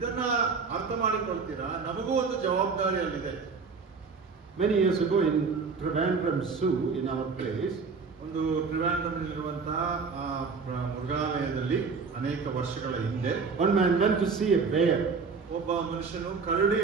ಅರ್ಥ ಮಾಡಿಕೊಳ್ತೀರಾ? ನಮಗೂ ಒಂದು ಜವಾಬ್ದಾರಿ ಅಲ್ಲಿದೆ. Many years ago in Trivandrum Zoo, in our place, ಒಂದು ಟ್ರಿವಾಂಡ್ರಮ್ನಲ್ಲಿರುವಂತಹ ಮೃಗಾಲಯದಲ್ಲಿ ಅನೇಕ ವರ್ಷಗಳ ಹಿಂದೆ one man went to see a bear. ಒಬ್ಬ ಮನುಷ್ಯನು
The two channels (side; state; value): left; quieter; 5.0 dB